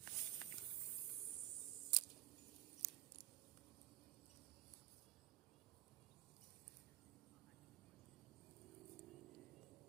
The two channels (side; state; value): left; quieter; 15.0 dB